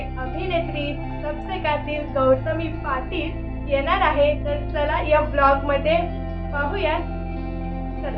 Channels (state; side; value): identical; both; correlation 1.00